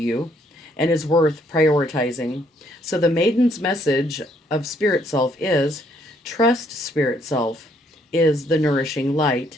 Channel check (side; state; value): both; normal; correlation 0.68